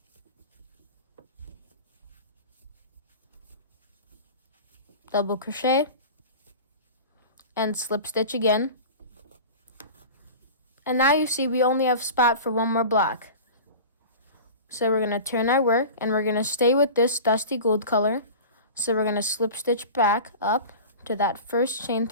Double crochet and slip stitch again. And now you see we only have spot for 1 more block. So we're going to turn our work and we're going to stay with this dusty gold color. So we're going to slip stitch back up to that first chain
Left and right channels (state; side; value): inverted; both; correlation -0.35